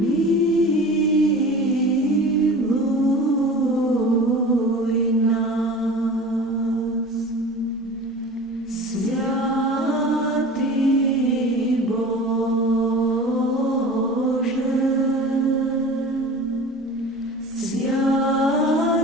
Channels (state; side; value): normal; both; correlation 0.38